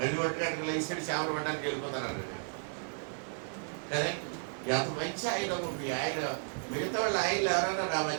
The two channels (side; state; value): left; silent; 55 dB below the other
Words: పట్టుకాడికి లేచాడు, చేపలు పడ్డానికి వెళ్ళిపోతాను అన్నాడు. కదే ఎంత మంచి ఆయన ఉంది ఆయన. మిగతా వాళ్ళు ఆయనలు ఎవరైనా